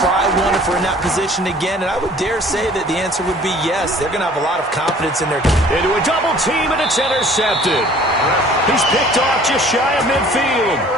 one if we're in that position again? And I would dare say that the answer would be yes. They're going to have a lot of confidence in their... Into a double team, and it's intercepted. He's picked off just shy of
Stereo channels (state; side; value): normal; both; correlation 0.52